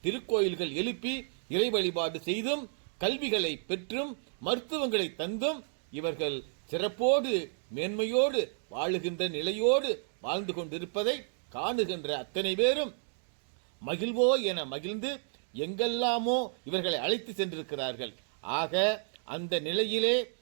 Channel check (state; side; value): silent; left; digital silence